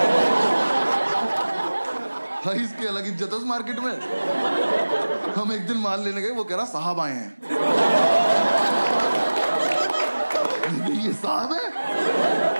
इसकी अलग इज्जत है उस मार्केट में। हम एक दिन माल लेने गए, वो कह रहा साहब आए हैं। ये साहब है?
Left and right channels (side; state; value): both; inverted; correlation -1.00